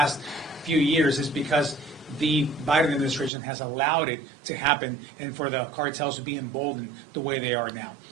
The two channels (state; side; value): drops out; left; at 3.3 s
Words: few years is because the Biden administration has allowed it to happen and for the cartels to be emboldened the way they are now.